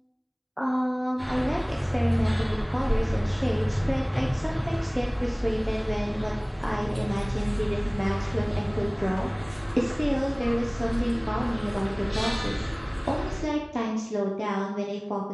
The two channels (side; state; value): both; identical; correlation 1.00